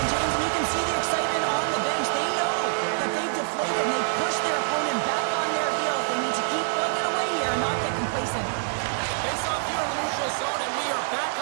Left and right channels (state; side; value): silent; left; digital silence